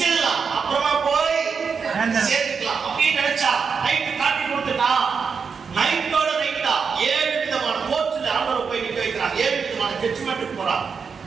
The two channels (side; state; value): left; quieter; 5.8 dB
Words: அப்புறமா போய் சேர்த்துக்கலாம் அப்படின்னு நினைச்சா நைட்டு காட்டி கொடுத்துட்டா. நைட்டோட நைட்டா 7 விதமான கோர்ட்ல ஆர்டர் போய் நிக்க வைக்கிறான். 7 விதமான ஜட்ஜ்மென்ட்க்கு போறான்.